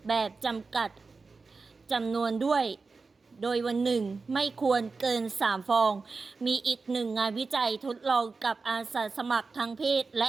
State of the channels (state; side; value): quieter; left; 4.2 dB